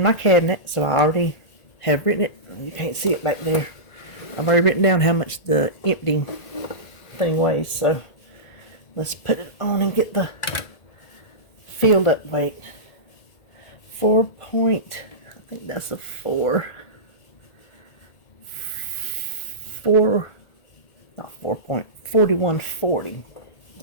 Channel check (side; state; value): right; late; 1.5 ms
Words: my cabinet, so I already have written it. You can't see it back there. I've already written down how much the empty thing weighs, so let's put it on and get the filled up weight. 4 point, I think that's a 4. 4, not 4.4140.